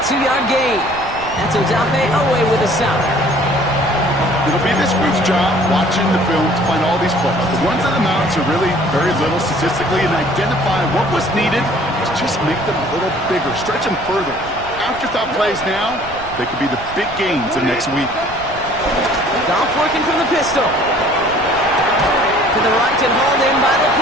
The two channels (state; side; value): noise; right; rumble, 17 dB below the sound